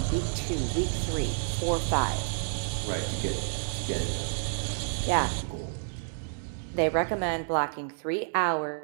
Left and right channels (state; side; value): silent; left; digital silence